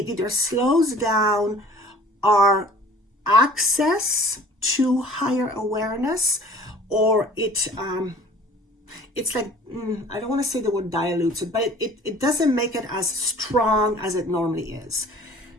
either slows down our access to higher awareness, or it's like, I don't want to say the word dilutes it, but it doesn't make it as strong as it normally is.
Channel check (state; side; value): normal; both; correlation 0.48